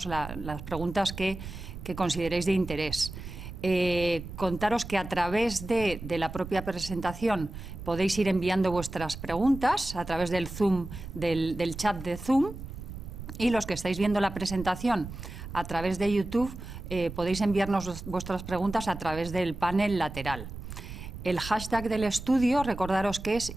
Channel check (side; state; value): right; noise; rumble, 11 dB below the sound